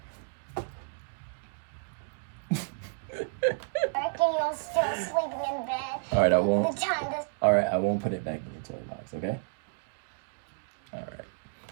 Becky, you're still sleeping in bed. All right, I won't. The time is All right, I won't put it back in your toy box. Okay. All right.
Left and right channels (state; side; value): silent; left; digital silence